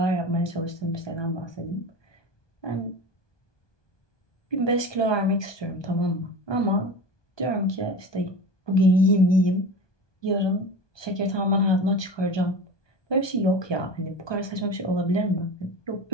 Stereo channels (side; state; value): right; late; 1.2 ms